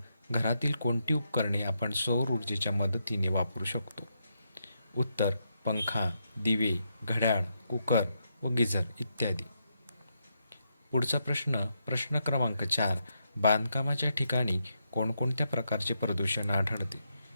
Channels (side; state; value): both; inverted; correlation -0.81